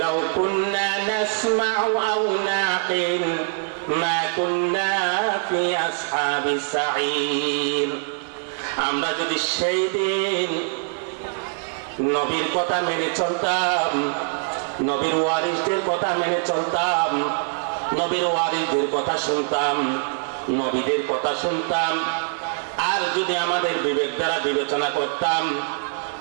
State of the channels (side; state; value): left; silent; 63 dB below the other